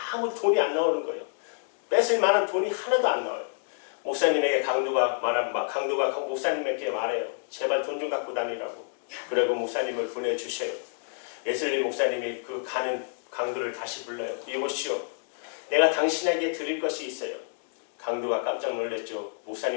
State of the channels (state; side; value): silent; right; digital silence